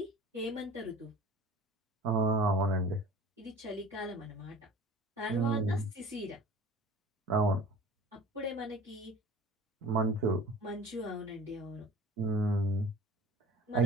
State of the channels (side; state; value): both; normal; correlation 0.43